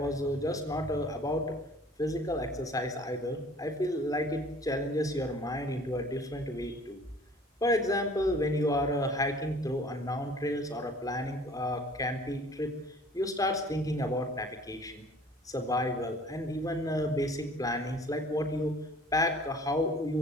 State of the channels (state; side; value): normal; both; correlation 0.50